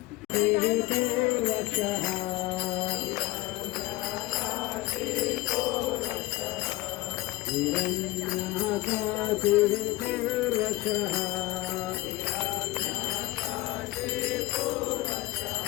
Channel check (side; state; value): right; quieter; 18.7 dB